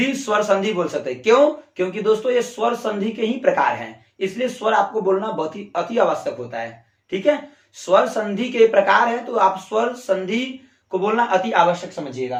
स्वर संधि बोल सकते हैं। क्यों, क्योंकि दोस्तों ये स्वर संधि के ही प्रकार हैं, इसलिए स्वर आपको बोलना बहुत ही अति आवश्यक होता है, ठीक है। स्वर संधि के प्रकार है तो आप स्वर संधि को बोलना अति आवश्यक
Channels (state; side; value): identical; both; correlation 1.00